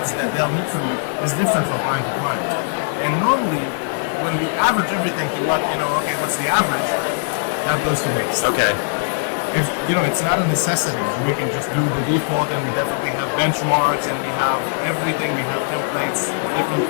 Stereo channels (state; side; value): silent; right; digital silence